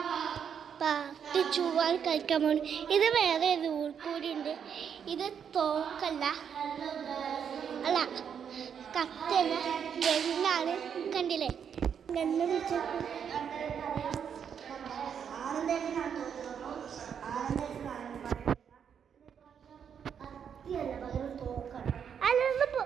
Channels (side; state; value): left; quieter; 7.7 dB